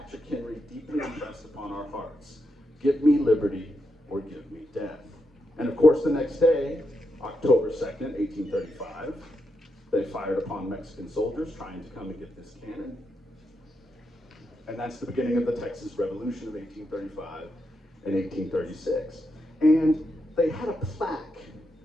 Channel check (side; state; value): both; normal; correlation 0.84